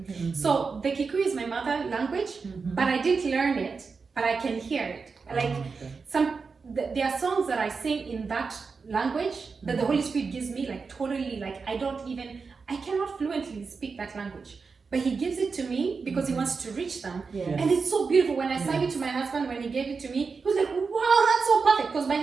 So the Kikuyu is my mother language, but I didn't learn it, but I can hear it. Like there are songs that I sing in that language that the Holy Spirit gives me, like totally, like I cannot fluently speak that language, but He gives it to me because He wants to reach them. And it's so beautiful. When I sang it to my husband, when he gave it to me, he was like, wow, that's so perfect, because my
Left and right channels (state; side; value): quieter; left; 4.9 dB